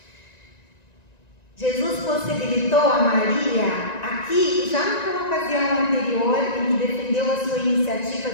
Jesus possibilitou a Maria, aqui, já naquela ocasião anterior, em que defendeu a sua iniciativa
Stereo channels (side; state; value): right; late; 1.9 ms